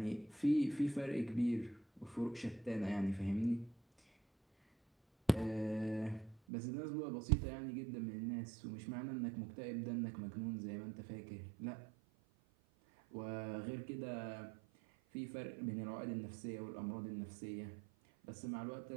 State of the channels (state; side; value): drops out; left; at 6.4 s